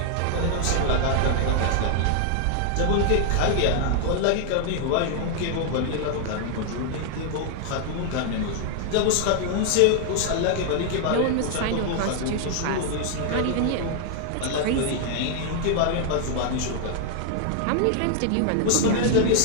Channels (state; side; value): different; both; correlation 0.00